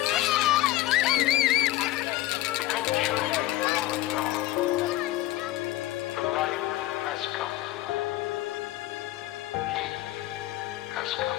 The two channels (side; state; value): right; quieter; 16.0 dB